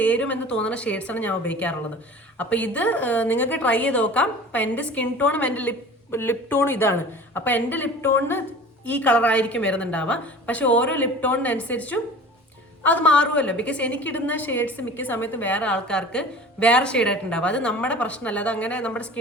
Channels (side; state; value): both; normal; correlation 0.41